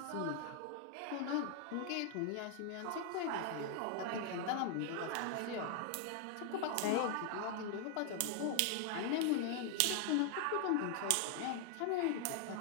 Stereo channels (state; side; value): different; both; correlation 0.00